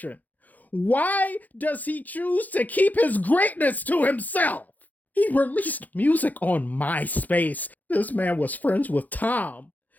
Why does he choose to keep his greatness to himself? He released music on MySpace. This man was friends with Tom.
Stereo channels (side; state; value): right; late; 0.081 ms